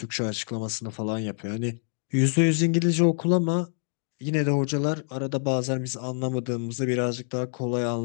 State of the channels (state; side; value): silent; right; digital silence